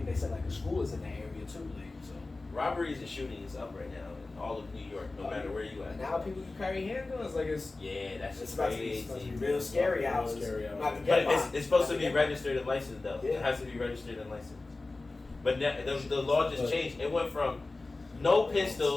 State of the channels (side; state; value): right; quieter; 3.3 dB